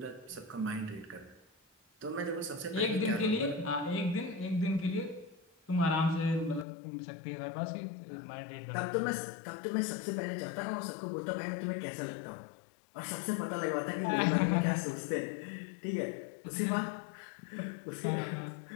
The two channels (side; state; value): right; drops out; at 6.7 s